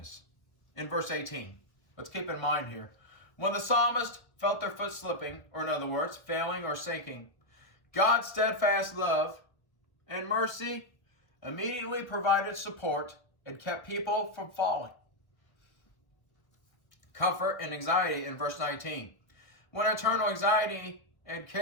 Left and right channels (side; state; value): right; late; 1.2 ms